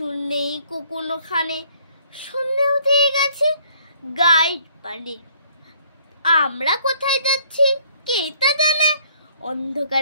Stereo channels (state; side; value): inverted; both; correlation -0.61